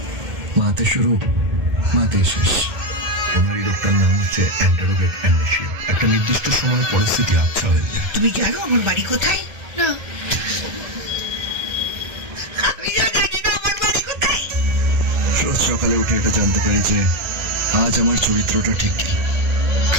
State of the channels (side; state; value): left; late; 1.8 ms